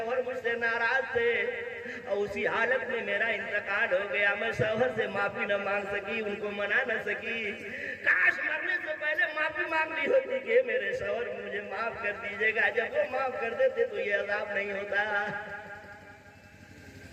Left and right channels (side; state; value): both; identical; correlation 1.00